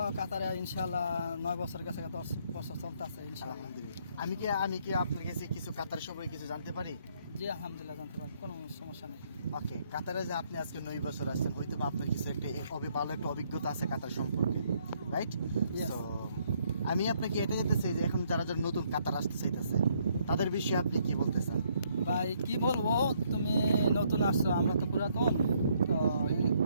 কাতারে ইনশাআল্লাহ 9 বছর গেছে, 10 বছর চলতেছে ইনশাআল্লাহ। আলহামদুলিল্লাহ। আমি কি আপনার কাছে কিছু কাতার সম্পর্কে কিছু জানতে পারি? জি আলহামদুলিল্লাহ জানতে পারি, কোনো সমস্যা নেই। ওকে, কাতারে যে আপনি আজকে 9 বছর আসছেন, হয়তো বা আপনার কিছু একটা ভালো একটা অভিজ্ঞতা আছে কাতার সম্পর্কে, রাইট? তো আমি আপনাকে এটা জানতে চাই যে এখন যারা যারা নতুন কাতার আসতে চাইতেছে তাদের বিষয়ে আপনি কি বলতে চান? ভাই কি বলবো, তুমি নতুন আসছো, আমরা তো পুরাতন। তো এই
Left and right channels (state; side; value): inverted; both; correlation -0.69